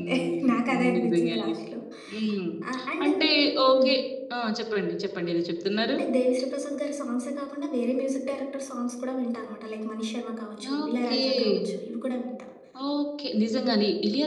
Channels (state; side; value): identical; both; correlation 1.00